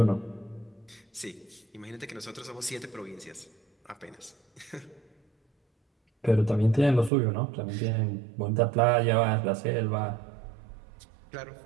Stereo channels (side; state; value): left; drops out; at 7.1 s